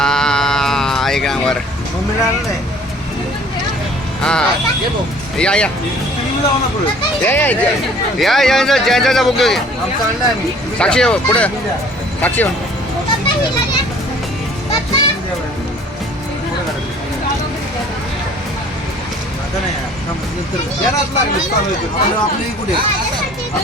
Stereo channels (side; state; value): both; normal; correlation 0.52